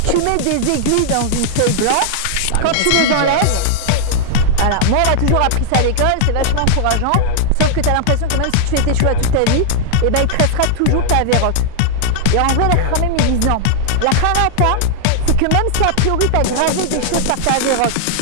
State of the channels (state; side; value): different; both; correlation -0.01